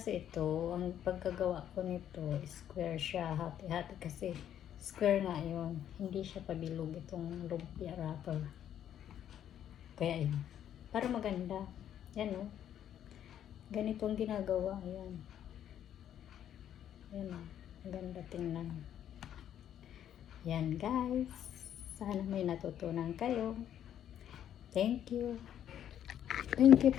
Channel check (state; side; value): quieter; right; 10.3 dB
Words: ito, ang pagkagawa ko nito, square siya. Hati-hati kasi square nga yun. Hindi siya pabilog itong lumpia wrapper. Kaya yun. Para maganda. Yan o. Ganito ang ginagawa. Ayan. Yan o. Maganda tingnan. Yan guys. Sana may natutunan kayo. Thank you. Thank you